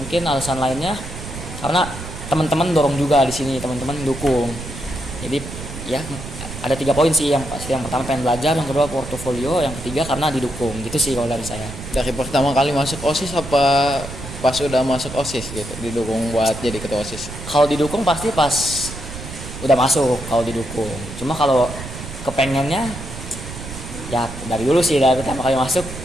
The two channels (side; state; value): right; noise; rumble, 11 dB below the sound